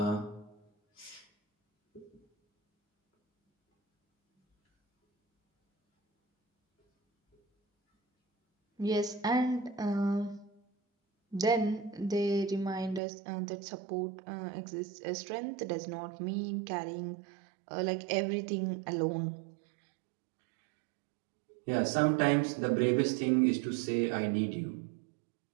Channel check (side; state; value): left; drops out; at 13.0 s